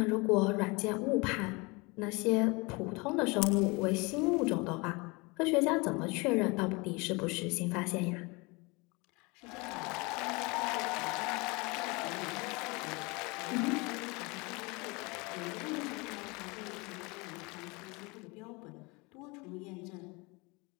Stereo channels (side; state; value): right; quieter; 26.8 dB